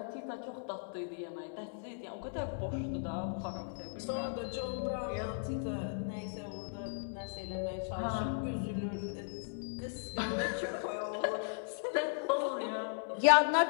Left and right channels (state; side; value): silent; right; digital silence